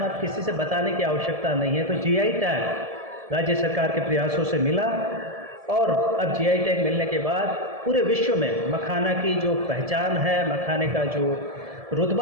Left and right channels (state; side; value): late; left; 1.7 ms